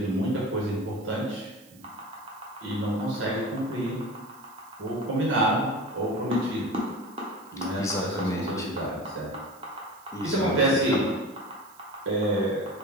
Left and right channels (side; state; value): right; noise; hiss, 25 dB below the sound